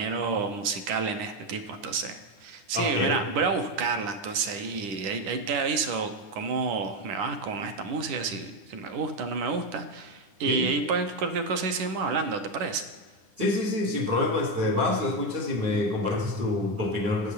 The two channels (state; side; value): late; left; 9.9 ms